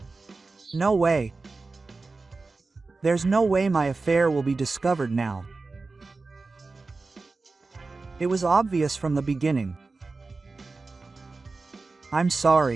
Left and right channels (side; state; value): left; quieter; 3.8 dB